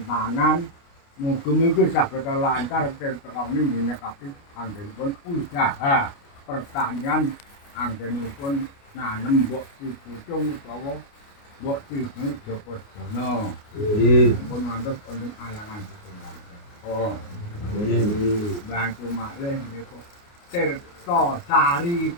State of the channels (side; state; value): right; late; 29 ms